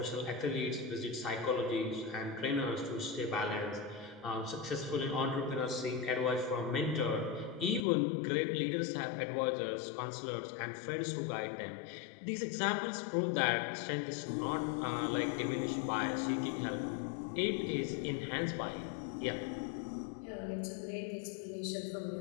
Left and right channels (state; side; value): drops out; right; at 7.8 s